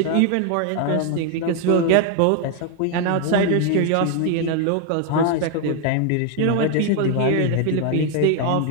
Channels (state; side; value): different; both; correlation 0.00